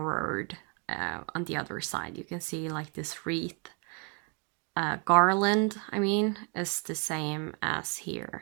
on the other side. You can see like this wreath garland, I mean, is the same as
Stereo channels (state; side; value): quieter; left; 32.8 dB